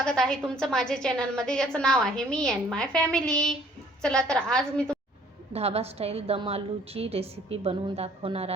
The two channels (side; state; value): both; normal; correlation 0.58